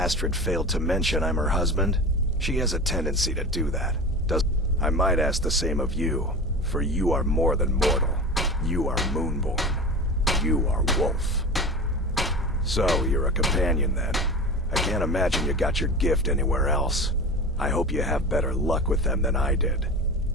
failed to mention I'm her husband. She has a tendency to do that. I might ask the same of you, for you are more than mortal. You are Moonborn. You are Wolf. So, you're a companion then. I can't imagine you got your gift anywhere else. I hope you have better luck with them than I did.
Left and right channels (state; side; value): normal; both; correlation 0.30